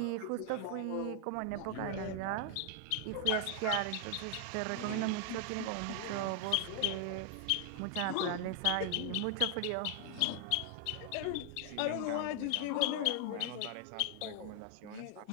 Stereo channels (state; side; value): different; both; correlation 0.00